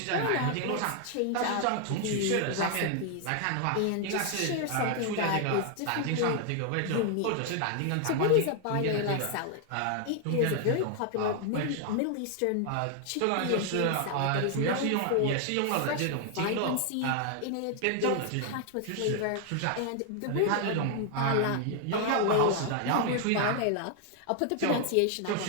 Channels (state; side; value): different; both; correlation 0.00